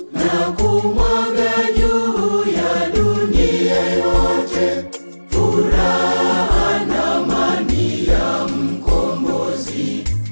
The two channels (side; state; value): both; inverted; correlation -1.00